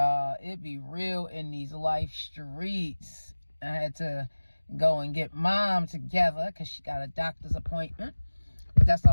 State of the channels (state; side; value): inverted; both; correlation -1.00